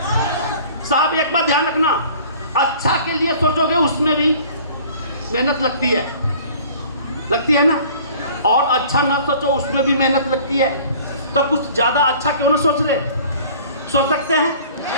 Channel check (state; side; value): inverted; both; correlation -0.49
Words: साहब, एक बात ध्यान रखना, अच्छा के लिए सोचोगे उसमें भी मेहनत लगती है ना, और अच्छा ना सोचो उसमें भी मेहनत लगती है। तो कुछ ज़्यादा अच्छा क्यों ना सोच सकते हैं,